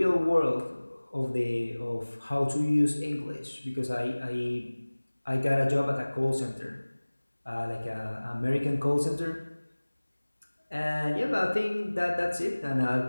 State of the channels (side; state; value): both; inverted; correlation -1.00